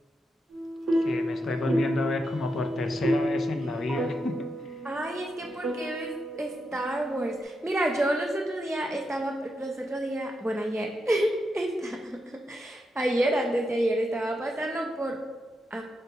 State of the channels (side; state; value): both; normal; correlation 0.84